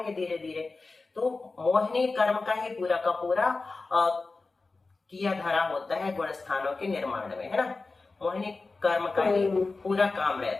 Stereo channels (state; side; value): quieter; right; 3.7 dB